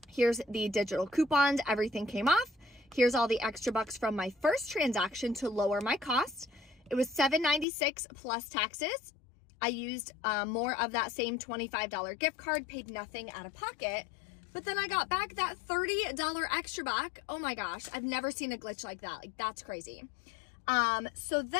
Here's the digital coupons. Everything came off. Here's all the extra bucks from my first transaction to lower my cost. It was $7.96 plus taxes. I used more of that same $25 gift card, paid nothing out of pocket. But then I got back that $30 extra buck. Oh my gosh, I've never seen a glitch like that. Like, that's crazy. So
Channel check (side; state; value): right; drops out; at 7.7 s